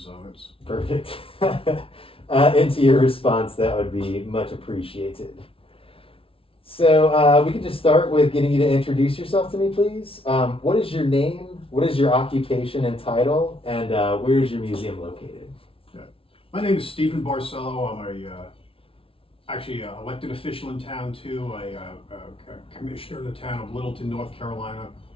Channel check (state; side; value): late; right; 0.26 ms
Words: so it's. Perfect. Into your response, that would be much appreciated. So we could just start with getting you to introduce yourself to me, please. What is your name? What is your occupation and title? And where is your museum located? My name is Stephen Barcelo. I'm actually an elected official in town too. A commissioner in the town of Littleton, North Carolina.